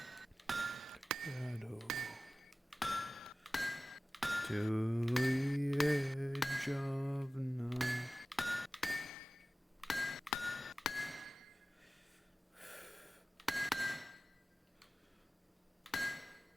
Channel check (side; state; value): both; normal; correlation 0.96